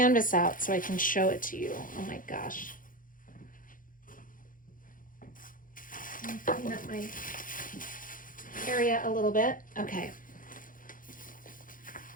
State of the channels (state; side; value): late; right; 0.40 ms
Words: out so I can show it to you. Oh my gosh. Clean up my area a little bit. Okay.